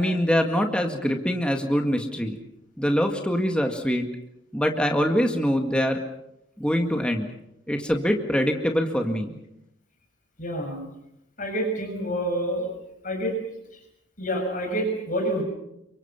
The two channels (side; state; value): both; normal; correlation 0.75